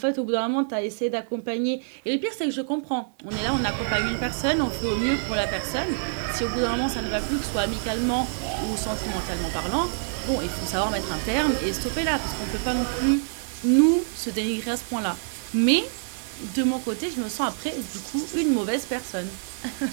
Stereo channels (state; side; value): silent; left; 56 dB below the other